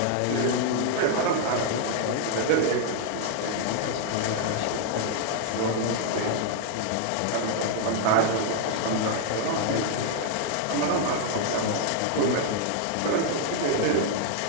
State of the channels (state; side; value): different; both; correlation 0.00